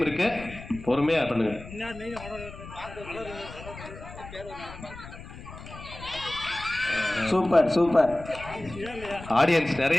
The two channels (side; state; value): left; noise; rumble, 14 dB below the sound